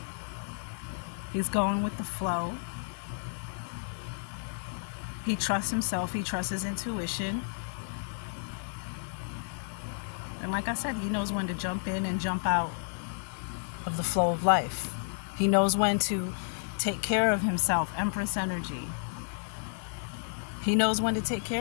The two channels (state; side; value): silent; right; digital silence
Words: He's going with the flow. He trusts himself. He trusts his intuition. And like I said, he knows when to jump in and jump out of the flow of life. He knows when to take care of himself. Empress energy. He knows when to take